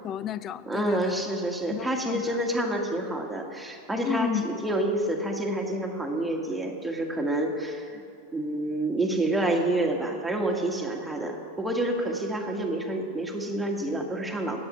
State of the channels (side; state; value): both; normal; correlation 0.47